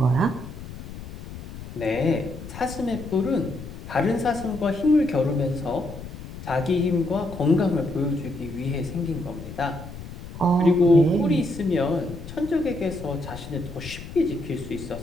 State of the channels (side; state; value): left; noise; rumble, 12 dB below the sound